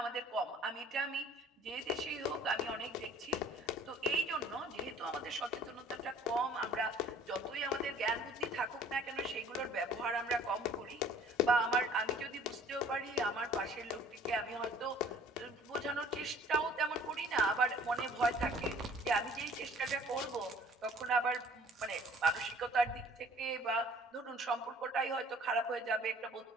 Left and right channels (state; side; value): normal; both; correlation 0.52